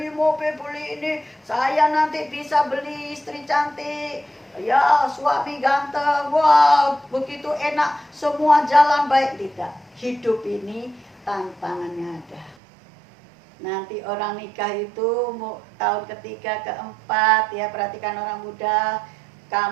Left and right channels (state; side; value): drops out; left; at 12.6 s